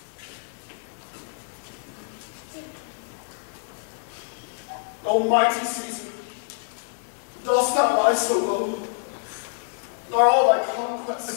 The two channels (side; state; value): right; silent; digital silence